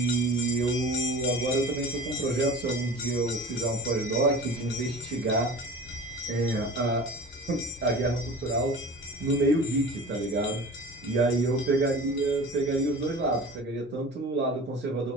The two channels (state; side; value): normal; both; correlation 0.38